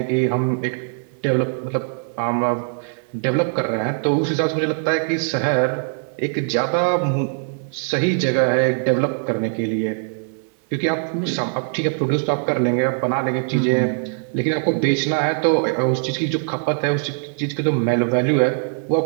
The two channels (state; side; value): silent; left; digital silence